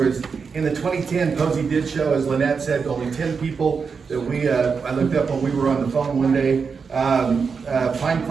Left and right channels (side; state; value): left; quieter; 5.5 dB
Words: in the 2010, Posey did show, as Lynette said, only 10 people that I looked up when we were on the phone one day. Pine